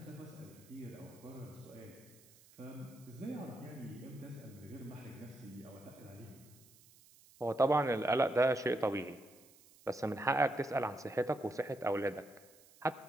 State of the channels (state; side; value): noise; right; hiss, 25 dB below the sound